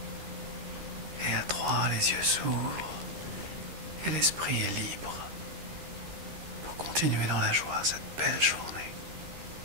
Et à 3, les yeux s'ouvrent et l'esprit est libre pour continuer dans la joie cette belle journée.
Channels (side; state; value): left; late; 13 ms